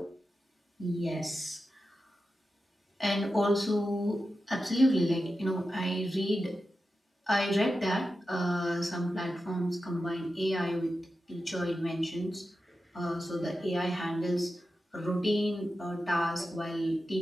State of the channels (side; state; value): both; normal; correlation 0.91